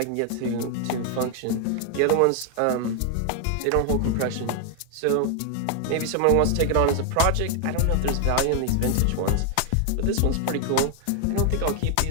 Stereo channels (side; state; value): both; different; correlation 0.00